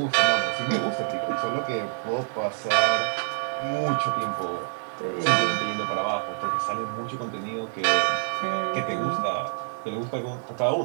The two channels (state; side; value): silent; left; digital silence